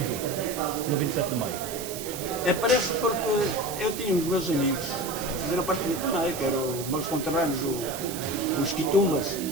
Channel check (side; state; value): right; noise; hiss, 9 dB below the sound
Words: no 27 de maio? Aparece porque eu tinha os meus amigos que fizeram parte do também, que eram os meus conterrâneos, os Quitumbas,